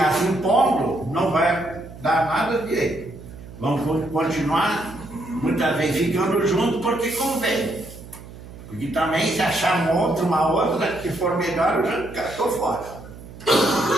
se impondo não vai dar nada direito. Vamos continuar, muitas vezes, ficando juntos porque convém. Porque também se achar uma outra que for melhor, eu já estou fora.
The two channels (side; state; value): right; noise; hum, 16 dB below the sound